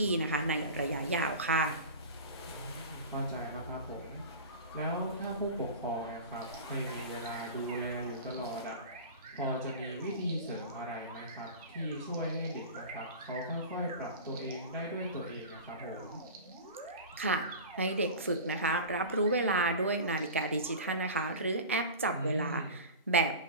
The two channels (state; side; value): inverted; both; correlation -0.32